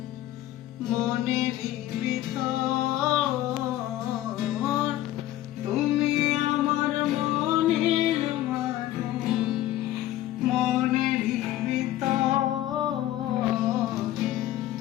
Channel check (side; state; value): right; quieter; 14.2 dB